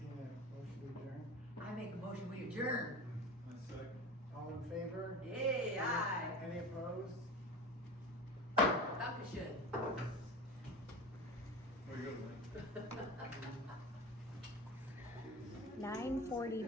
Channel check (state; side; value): normal; both; correlation 0.33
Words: a motion to adjourn? I make a motion, we adjourn. A second. All in favor? Yay, aye. Any opposed? Dankeschön. Where you go, Mike?